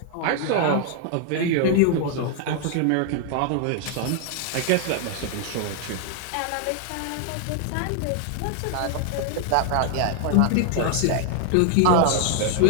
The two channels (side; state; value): both; different; correlation 0.00